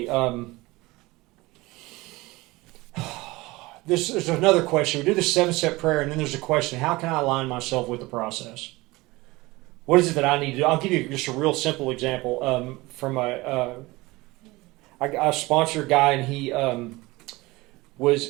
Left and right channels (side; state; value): left; quieter; 21.4 dB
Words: There's another question. We do the 7-step prayer, and then there's a question: how can I align myself with the process? What is it that I need to do? I'll give you just a real simple example from I sponsor a guy, and he